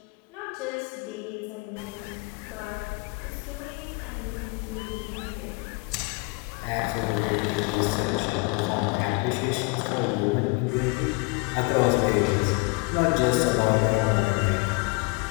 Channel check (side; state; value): right; quieter; 27.9 dB